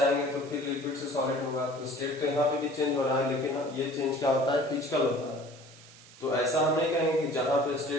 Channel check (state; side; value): noise; right; hiss, 22 dB below the sound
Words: तो फिर लिक्विड से सॉलिड होगा, तो स्टेट तो यहाँ पे भी चेंज हो रहा है, लेकिन ये चेंज क्या होता है, फिजिकल होता है। तो ऐसा हम नहीं कहेंगे कि जहां पे